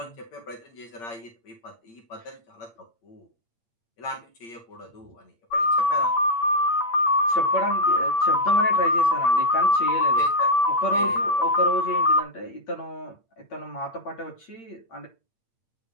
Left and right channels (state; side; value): late; right; 8.7 ms